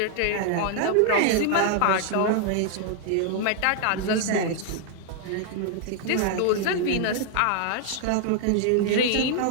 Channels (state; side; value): different; both; correlation 0.00